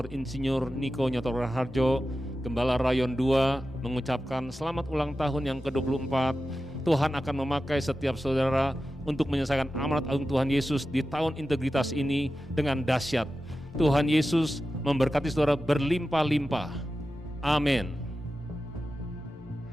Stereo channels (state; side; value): normal; both; correlation 0.93